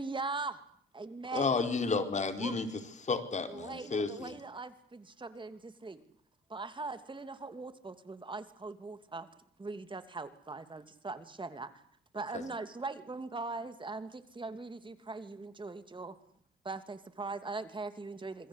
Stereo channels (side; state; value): both; normal; correlation 0.42